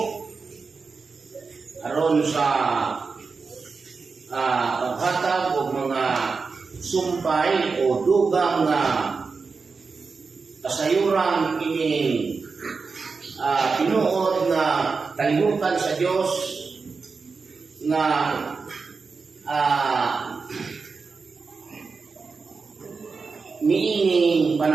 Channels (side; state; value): left; quieter; 4.7 dB